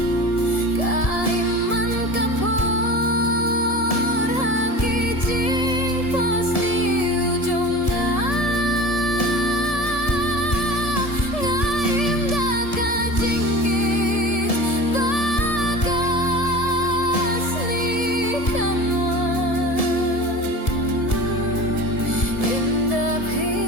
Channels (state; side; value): late; right; 1.7 ms